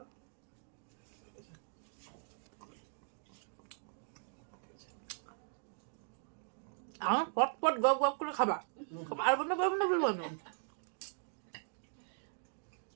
আমার পট পট গপ গপ করে খাবা, পারবো না বলবো না।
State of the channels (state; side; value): silent; left; digital silence